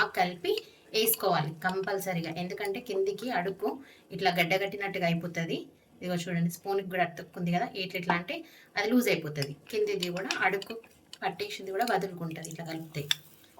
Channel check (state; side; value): identical; both; correlation 1.00